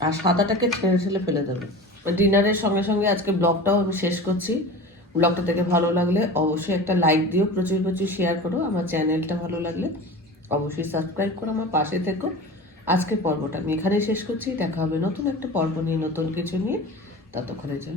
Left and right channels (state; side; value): normal; both; correlation 0.34